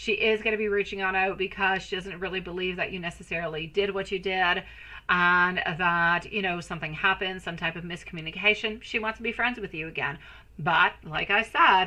is going to be reaching on out because she doesn't really believe that you necessarily did what you did, and that, you know, something happened, some type of miscommunication. She wants to be friends with you again. But, like I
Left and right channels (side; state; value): both; identical; correlation 1.00